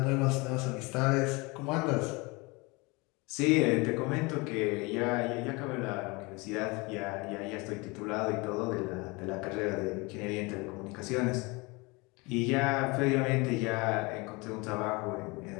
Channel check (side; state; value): right; quieter; 26.3 dB